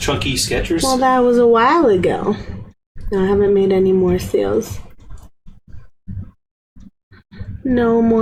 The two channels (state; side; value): identical; both; correlation 1.00